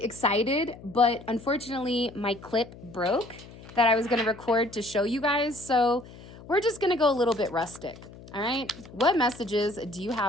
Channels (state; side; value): noise; left; hum, 18 dB below the sound